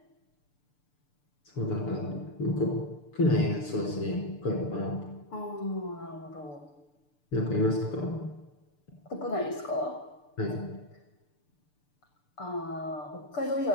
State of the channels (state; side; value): late; right; 6.8 ms